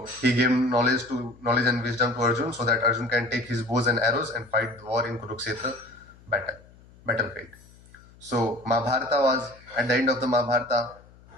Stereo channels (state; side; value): noise; left; hum, 25 dB below the sound